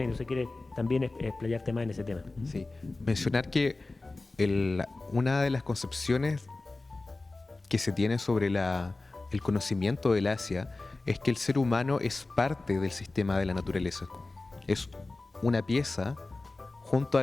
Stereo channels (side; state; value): right; quieter; 3.3 dB